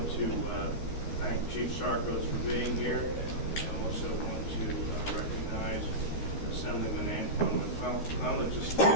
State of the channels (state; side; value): late; right; 13 ms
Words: to thank Chief Sarkos for being here. I also want to recognize Assemblyman Antoine McClellan, just